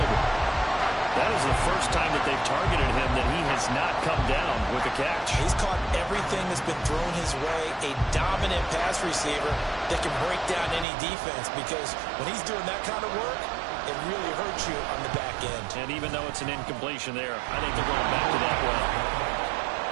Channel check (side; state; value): left; drops out; at 10.9 s